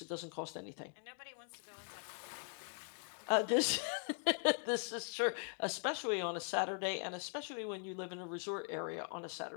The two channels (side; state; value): right; silent; 50 dB below the other